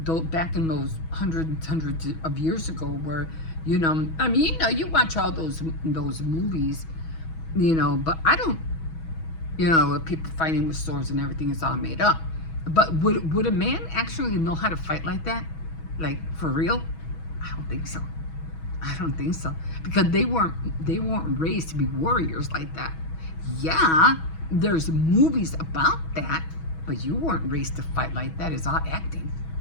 Back in those hundreds of years ago, where, I mean, you watch all those movies, but I don't, people fighting with swords and everything is all made up. But would a man actually know how to fight like that? Like, for real? I don't think so. I don't think so. Because they weren't raised to be warriors like that. Yeah, there's movies about that, but you weren't raised to fight like that. It's all acting.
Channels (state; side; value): late; right; 6.2 ms